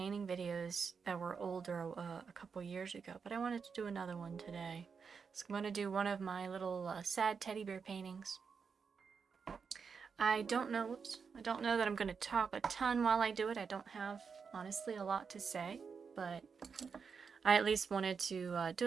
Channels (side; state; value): left; quieter; 5.8 dB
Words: videos that were older a couple years ago, but I wanted to do another one today. So I'm going to do one of my little sad teddy bear paintings. I don't know that I'm going to talk a ton while I do it. I don't have, honestly, a lot to say, but I at least wanted to do